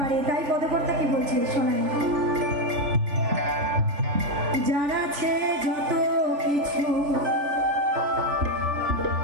তাই পদকর্তা কি বলছে শোনায়, যারা আছে যত কিছু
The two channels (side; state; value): left; late; 3.5 ms